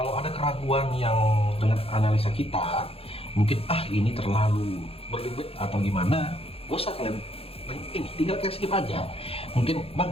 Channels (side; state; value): right; late; 0.28 ms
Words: ada keraguan yang dengan analisa kita, mungkin ini terlalu berlebih atau gimana, gak usah kalian ini tinggal kayak skip aja. Mungkin bang